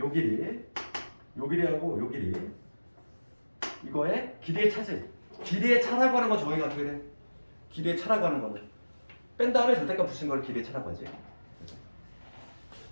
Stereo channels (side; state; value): both; inverted; correlation -1.00